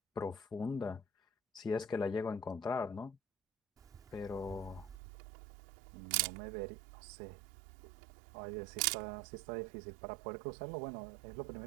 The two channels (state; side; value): drops out; left; at 5.0 s